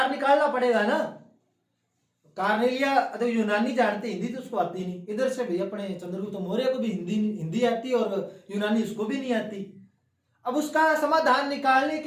निकालना पड़ेगा ना। कार्नेलिया तो यूनानी जानते, हिंदी तो उसको आती नहीं। इधर से भाई अपने चंद्रगुप्त मौर्य को भी हिंदी आती और यूनानी उसको भी नहीं आती। अब उसका समाधान निकालने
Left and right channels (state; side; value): identical; both; correlation 1.00